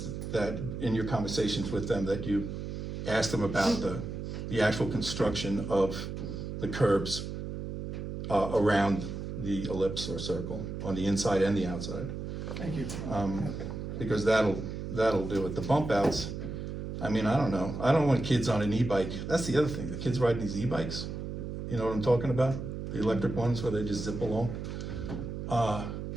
that in your conversations with them, that you ask them about the actual construction of the curbs around the ellipse or circle, on the inside and the outside. Thank you. Because that'll do it. The bump outs, I mean, I don't know. I don't want kids on an e-bike. That's the other thing, the kids riding these e-bikes. You know what I'm talking about? The electric ones where they just zip along.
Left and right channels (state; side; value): noise; right; hum, 6 dB below the sound